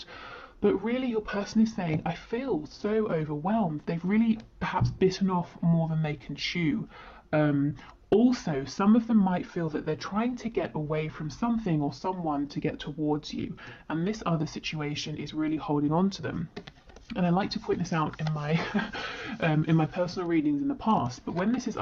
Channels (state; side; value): identical; both; correlation 1.00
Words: But really your person is saying, I feel so overwhelmed. They've really perhaps bitten off more than they can chew. Also, some of them might feel that they're trying to get away from something or someone to get towards you. And this other situation is really holding on to them. And I like to point this out in my in my personal readings in the past, but when this is